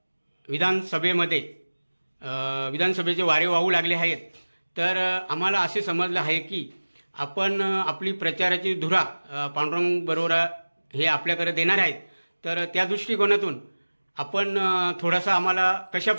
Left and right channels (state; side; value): inverted; both; correlation -1.00